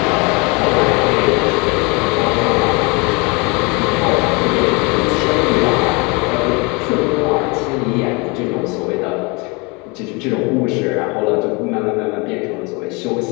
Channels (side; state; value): right; quieter; 28.6 dB